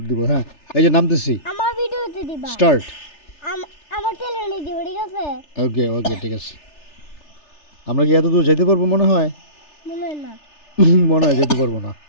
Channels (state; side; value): late; right; 3.3 ms